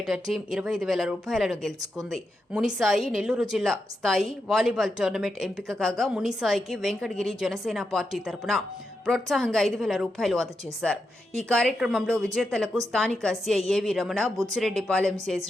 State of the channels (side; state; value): both; normal; correlation 0.86